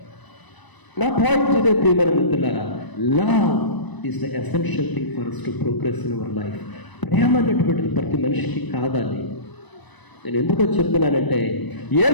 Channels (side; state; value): right; late; 1.0 ms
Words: నా పాయింట్ ఇదే ప్రియమైన మిత్రులారా, love is the essential thing for us to progress in our life. ప్రేమ అనేటువంటిది ప్రతి మనిషికి కావాలి. నేను ఎందుకో చెప్తున్నానంటే